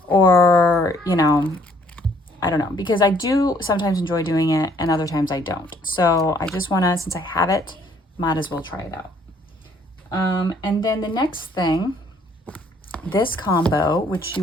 or, you know, I don't know, because I do sometimes enjoy doing it and other times I don't. So I just want to, since I have it, might as well try it out. And then the next thing, this combo, which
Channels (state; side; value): normal; both; correlation 0.63